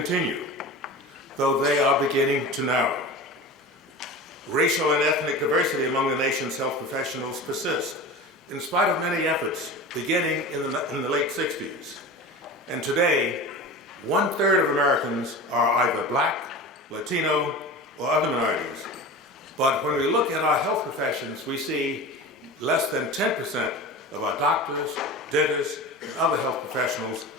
though they are beginning to narrow. Racial and ethnic diversity among the nation's health professionals persists, in spite of many efforts beginning in the late 60s. And today, 1/3 of Americans are either black, Latino, or other minorities. But when we look at our health professions, we see less than 10% of our doctors, dentists, and other health professionals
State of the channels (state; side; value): normal; both; correlation 0.32